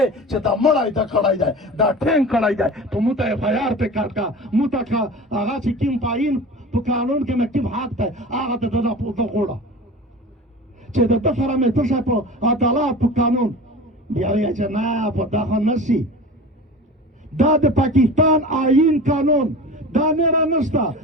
چې دا مړی ته کړی دی دا ټینګ کړی دی په مو ته اف آی آر پې کټ کا مو ته که هغه چې کوم تعین په قانون کې مې کوم حق دی هغه ته ده غوړه چې د ده سره مې څه شی په عدالت په قانون بیا وایي چې نه په دا خو نه شي دا د پاکستان آئین قانون دا نه را نشته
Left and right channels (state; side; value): normal; both; correlation 0.35